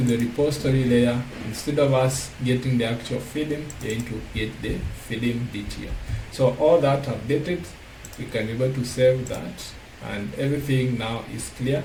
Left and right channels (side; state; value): both; identical; correlation 1.00